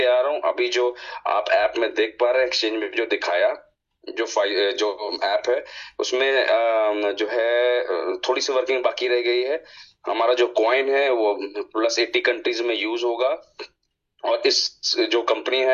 आ रहा हूँ। अभी जो आप ऐप में देख पा रहे हैं, एक्सचेंज में जो दिखाया, जो ऐप है उसमें जो है थोड़ी सी वर्किंग बाकी रह गई है। हमारा जो कॉइन है वो +80 कंट्रीज में यूज होगा। और इस जो कंपनी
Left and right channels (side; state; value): both; identical; correlation 1.00